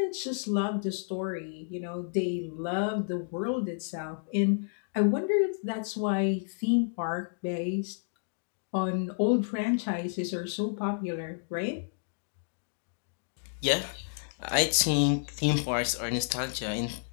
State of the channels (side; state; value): right; silent; digital silence